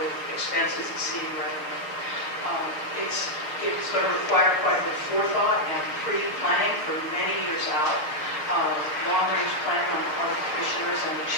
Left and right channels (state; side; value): late; right; 6.4 ms